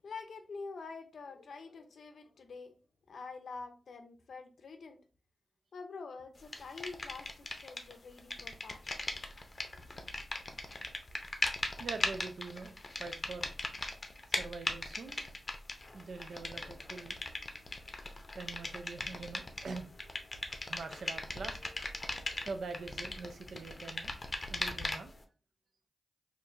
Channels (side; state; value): both; normal; correlation 0.92